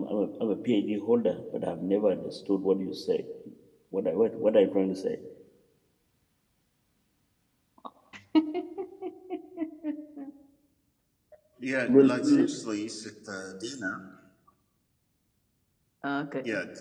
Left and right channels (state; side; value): identical; both; correlation 1.00